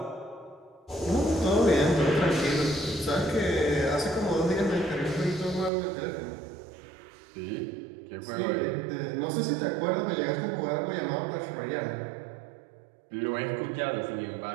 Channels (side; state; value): left; drops out; at 5.7 s